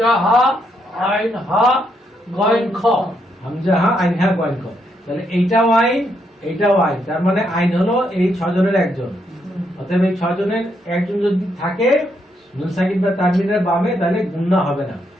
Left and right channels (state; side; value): normal; both; correlation 0.77